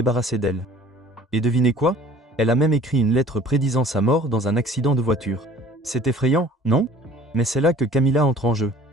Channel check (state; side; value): normal; both; correlation 0.50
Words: d'elle. Et devinez quoi? Elle a même écrit une lettre prédisant sa mort dans un accident de voiture. C'est effrayant, non? Mais c'est là que Camilla entre en jeu.